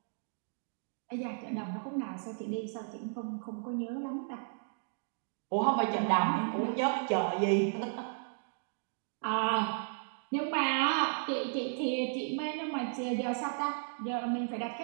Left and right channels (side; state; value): left; silent; digital silence